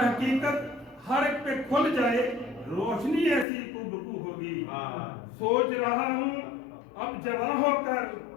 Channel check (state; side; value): drops out; right; at 3.5 s